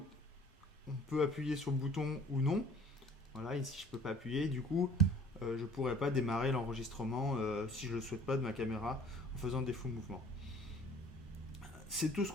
on peut appuyer sur le bouton ou non. Voilà, ici je ne peux pas appuyer. Du coup, je ne pourrais pas démarrer l'enregistrement si je ne le souhaite pas de ma caméra en faisant des faux mouvements. C'est tout ce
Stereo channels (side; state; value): both; normal; correlation 0.51